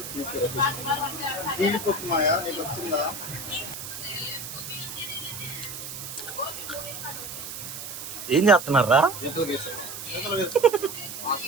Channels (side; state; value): right; noise; hiss, 9 dB below the sound